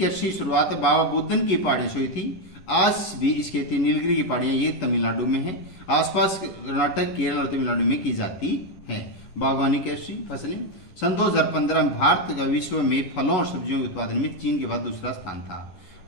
शुरुआत बाबा बुदन की पहाड़ियों से हुई थी। आज भी इस खेती नीलगिरी की पहाड़ियां ये तमिलनाडु में है। आसपास कर्नाटक, केरल और तमिलनाडु में की जाती है। बागवानी कृषि फसलें, सन 2015 में भारत का विश्व में फलों और सब्जियों के उत्पादन में चीन के बाद दूसरा स्थान था।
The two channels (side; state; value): right; late; 11 ms